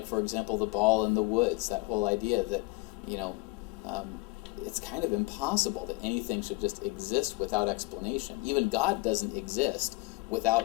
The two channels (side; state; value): right; quieter; 25.5 dB